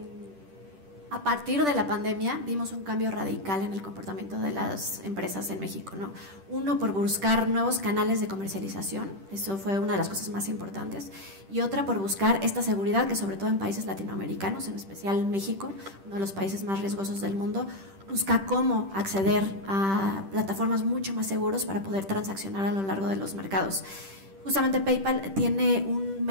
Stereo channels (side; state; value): left; late; 10 ms